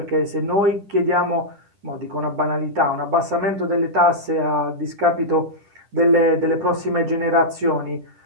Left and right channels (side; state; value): left; late; 10 ms